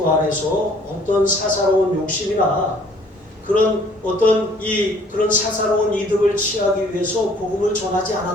안에서 어떤 사사로운 욕심이나 그런 그런 사사로운 이득을 취하기 위해서 복음을 전하지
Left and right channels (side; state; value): both; normal; correlation 0.57